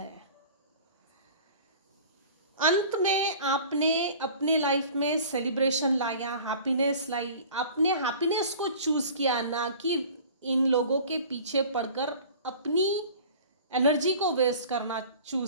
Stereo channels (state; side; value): inverted; both; correlation -0.44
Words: अंत में आपने अपने लाइफ में सेलिब्रेशन लाया, हैप्पीनेस लाई। आपने हैप्पीनेस को चूज किया, ना कि इन लोगों के पीछे पड़कर अपनी एनर्जी को वेस्ट करना